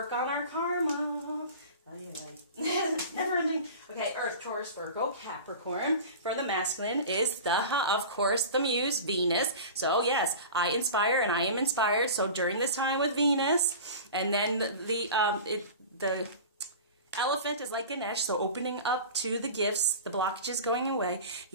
on our karma. Never ending. Okay, Earth, Taurus, Virgo, Capricorn. For the masculine is of course, the muse, Venus. So yes, I inspire and I am inspired. So during this time with Venus, and then the elephant is like Ganesh, so opening up to the gifts, the blockages going away.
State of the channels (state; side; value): inverted; both; correlation -0.35